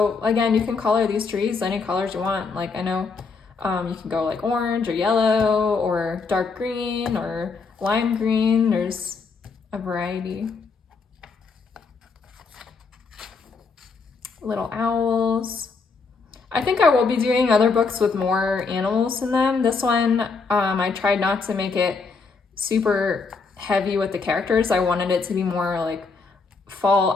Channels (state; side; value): quieter; right; 4.7 dB